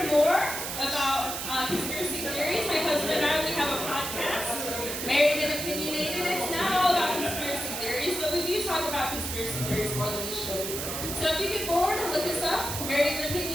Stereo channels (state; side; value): noise; right; hiss, 4 dB below the sound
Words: more about conspiracy theories, my husband and I, we have a podcast, Married and Opinionated. It's not all about conspiracy theories, but we do talk about conspiracy theories more than we should. So if you get bored, look us up, Married and